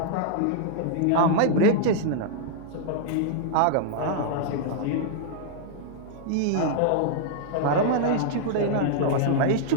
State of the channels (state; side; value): different; both; correlation -0.01